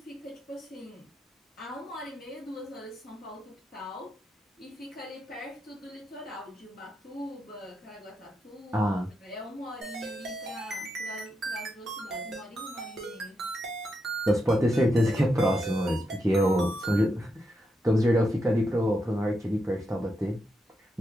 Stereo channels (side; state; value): both; normal; correlation 0.84